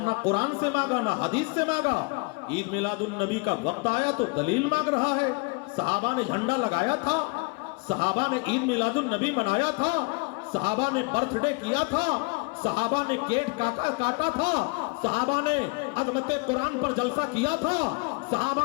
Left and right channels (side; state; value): right; quieter; 29.3 dB